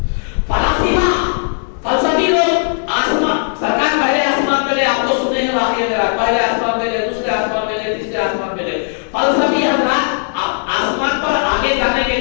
فلسفی لوگ آسمان سرکار پہلے آسمان پہ گئے آپ کو سنے ہیں واقعہ میرا پہلے آسمان پہ گئے دوسرے آسمان پہ گئے تیسرے آسمان پہ گئے فلسفی حضرات آسمان پر آگے جانے کے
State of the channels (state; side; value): silent; right; digital silence